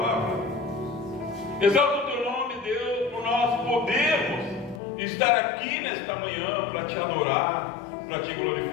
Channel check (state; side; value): drops out; right; at 4.8 s